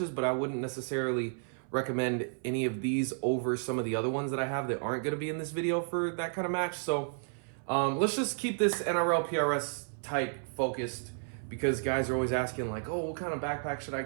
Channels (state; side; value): silent; left; 56 dB below the other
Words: but I wouldn't necessarily recommend any of these over some of the other ones that I have that aren't going to be in this video for that kind of match. So let's just keep this NRL PRS type focused, because guys are always asking like, oh, what kind of backpack should I